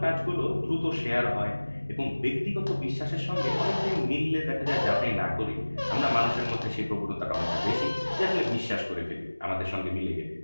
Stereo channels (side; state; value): both; inverted; correlation -1.00